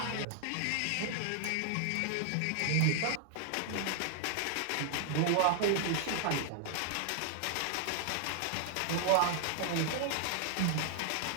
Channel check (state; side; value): different; both; correlation 0.00